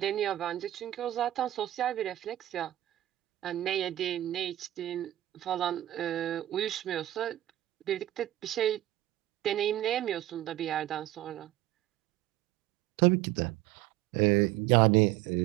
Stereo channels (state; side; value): quieter; left; 14.4 dB